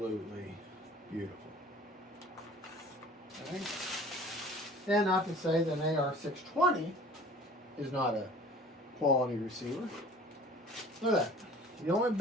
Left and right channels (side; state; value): both; normal; correlation 0.47